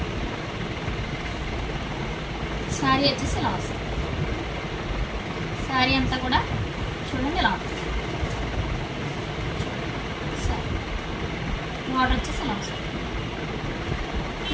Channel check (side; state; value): both; identical; correlation 1.00